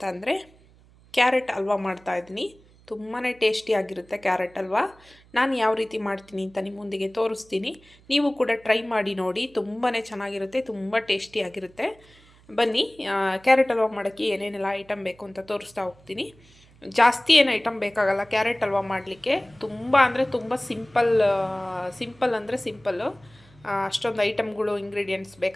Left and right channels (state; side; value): noise; right; hum, 27 dB below the sound